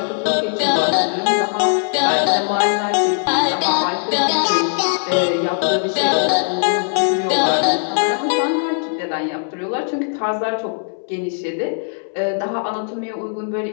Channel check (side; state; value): right; silent; digital silence